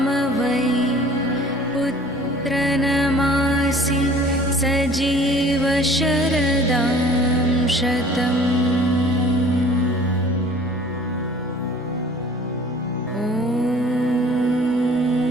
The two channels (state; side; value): normal; both; correlation 0.49